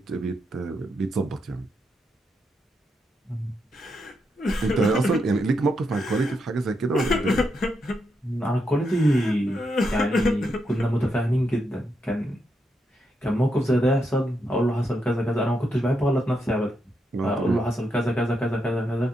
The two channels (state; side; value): normal; both; correlation 0.82